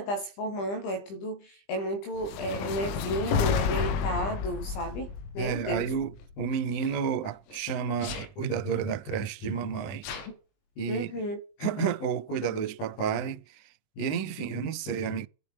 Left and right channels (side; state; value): right; late; 20 ms